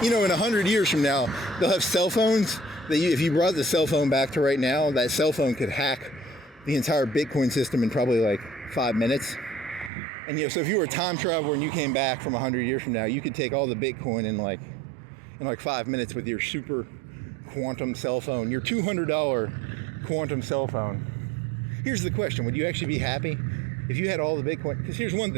You know, in 100 years from now, they'll have cell phones that if you brought the cell phone back to right now, that cell phone could hack the entire Bitcoin system in probably like 5 minutes. And, you know, so if you were a time traveler and you came back from 100 years from now, you could take all the Bitcoin in like 5 minutes with your super quantum cell phone, your $200 quantum cell phone. Here's the question. Would you actually be happy if you had all the Bitcoin? Because here's one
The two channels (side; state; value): left; drops out; at 9.9 s